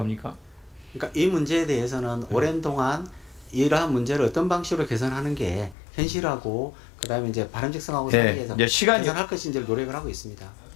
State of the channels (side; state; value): right; drops out; at 5.8 s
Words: 그러니까 이 문제에 대해서는 오랜 동안 이러한 문제를 어떤 방식으로 개선하는 게 현실하고 그다음에 이제 바람직성하고 네, 사이에서 이제 시간이 개선할 것인지를 노력을 하고 있습니다.